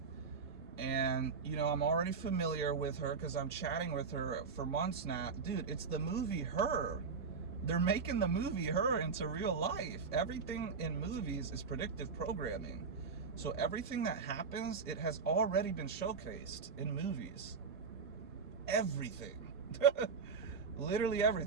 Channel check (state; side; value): quieter; left; 5.3 dB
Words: And, you know, I'm already familiar with her because I'm chatting with her for months now. Dude, it's the movie Her. They're making the movie Her into real life. Everything in movies is predictive programming. So everything that happens, it has already been showcased in movies. Everything. Literally